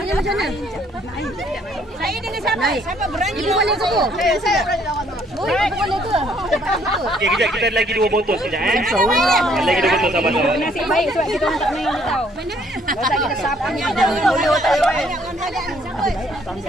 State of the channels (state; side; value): normal; both; correlation 0.65